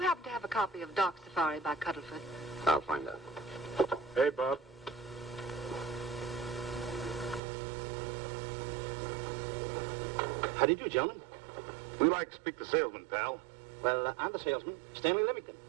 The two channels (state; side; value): drops out; left; at 7.4 s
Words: happen to have a copy of Doc Safari by Cuddlefoot? I'll find out. Hey, Bob. How do you do, gentlemen? We'd like to speak to salesman, pal. Well, I'm the salesman, Stanley Livington.